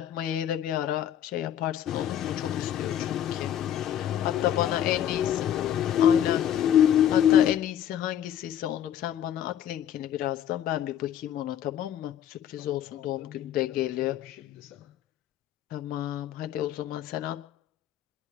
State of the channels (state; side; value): quieter; right; 10.4 dB